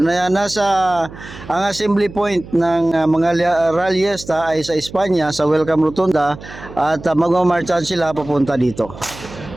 ang assembly point ng mga ralyesta ay sa Espanya, sa Welcome Rotunda, at magmamarchan sila papunta dito.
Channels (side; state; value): right; noise; hum, 16 dB below the sound